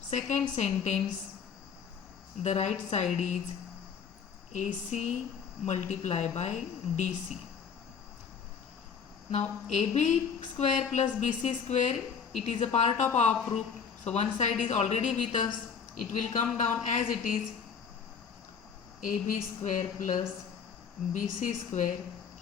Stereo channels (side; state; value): right; quieter; 6.6 dB